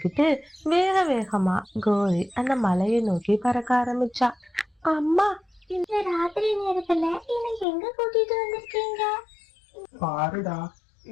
வேக வேகமா கோரி அந்த மலையை நோக்கி பறக்க ஆரம்பிச்சா. அம்மா, இந்த ராத்திரி நேரத்துல என்னை எங்க கூட்டிட்டு வந்திருக்கீங்க? பாருடா,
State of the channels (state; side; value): drops out; right; at 7.7 s